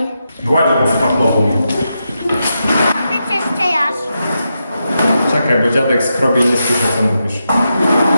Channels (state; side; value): inverted; both; correlation -0.86